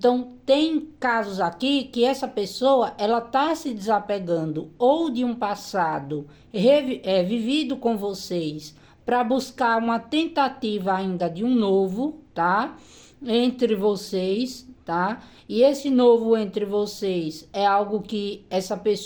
tem casos aqui que essa pessoa ela tá se desapegando ou de um passado vivido com vocês para buscar uma tentativa ainda de um novo, tá? Entre vocês, tá? E esse novo entre vocês é algo que essa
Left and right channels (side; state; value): both; identical; correlation 1.00